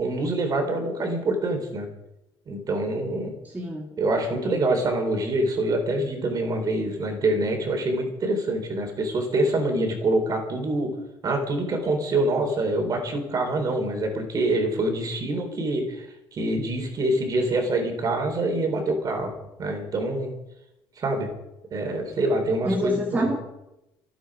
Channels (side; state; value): both; normal; correlation 0.62